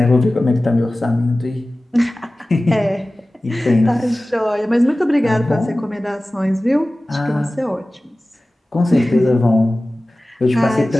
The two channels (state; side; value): normal; both; correlation 0.97